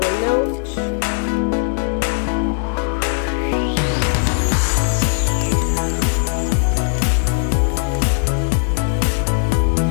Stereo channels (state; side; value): silent; right; digital silence